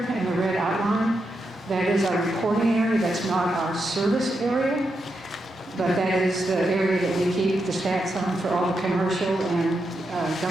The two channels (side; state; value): both; normal; correlation 0.85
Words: in the red outline, that is our reporting area. That's not our service area, but that is the area that we keep the stats on for all the commercial and